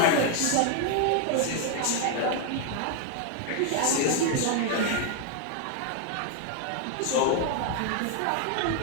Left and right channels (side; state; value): both; different; correlation 0.00